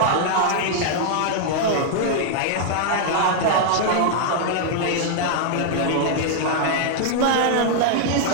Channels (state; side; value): different; both; correlation -0.01